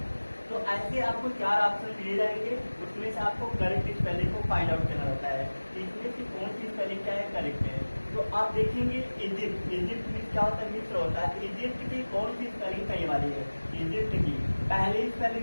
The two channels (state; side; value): inverted; both; correlation -1.00